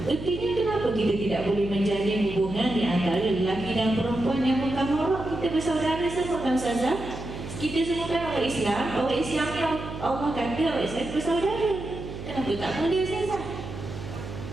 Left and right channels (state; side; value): noise; right; hum, 10 dB below the sound